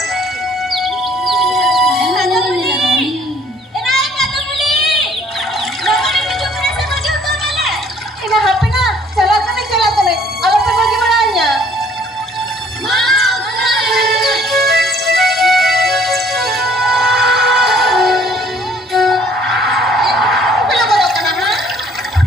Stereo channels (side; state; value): both; normal; correlation 0.59